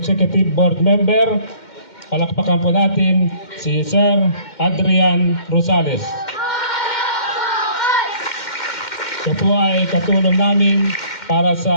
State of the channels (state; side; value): late; right; 2.1 ms